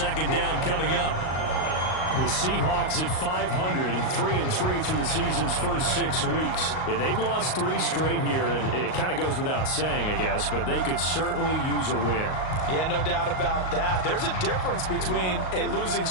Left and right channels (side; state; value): right; late; 38 ms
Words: down coming up. The Seahawks at 500, 3-3 through the season's first 6 weeks. Yeah, they've lost 3 straight here, and it kind of goes without saying, I guess, but they could certainly use a win. Yeah, no doubt about that. There's a difference between a losing